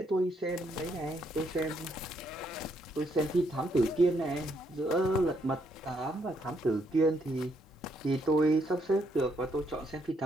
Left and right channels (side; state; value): both; normal; correlation 0.74